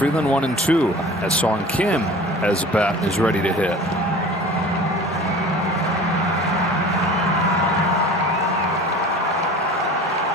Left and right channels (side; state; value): both; normal; correlation 0.41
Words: 1 and 2. As Song Kim has a bat and is ready to hit.